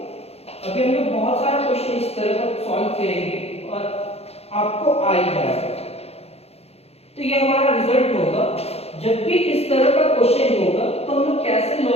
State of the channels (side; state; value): right; late; 0.30 ms